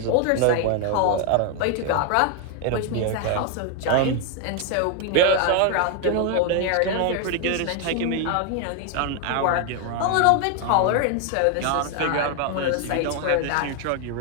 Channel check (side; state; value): both; different; correlation 0.01